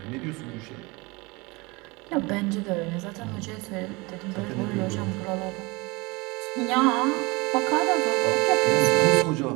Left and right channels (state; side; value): quieter; left; 25.4 dB